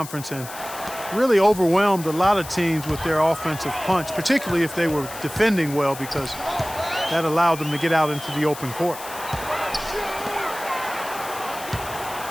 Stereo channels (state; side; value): noise; left; hiss, 13 dB below the sound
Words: and really overwhelmed a lot of teams with their offensive punch, particularly if they were defending well, because that allowed them to get out into the open court.